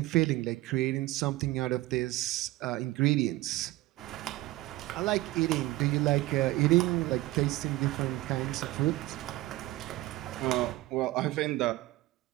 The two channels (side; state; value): left; quieter; 18.4 dB